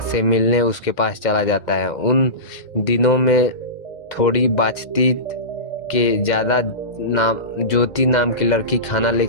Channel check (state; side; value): late; right; 2.0 ms